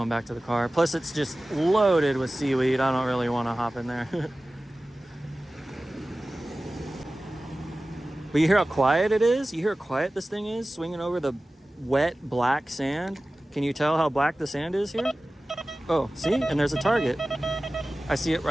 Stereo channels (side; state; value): both; normal; correlation 0.97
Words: back to the car. Plus, it's just loaded with seaweed. I don't really want to hop in there. But you hear how quiet it is? You hear how quiet this thing is swinging over the wet black sand? Can you tell how black the sand is here? Oh, see? And there's a target. I see it